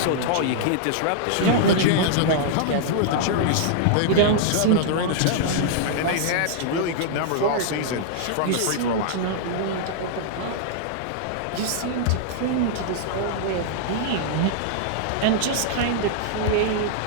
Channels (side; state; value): both; different; correlation -0.01